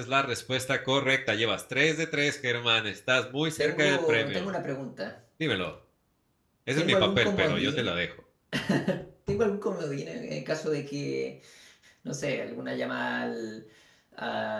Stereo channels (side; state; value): both; identical; correlation 1.00